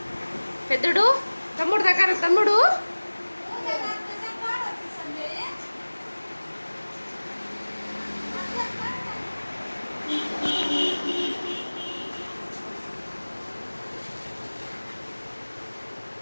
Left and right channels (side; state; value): both; inverted; correlation -1.00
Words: పెద్దడు తమ్ముడు దగ్గర తమ్ముడు.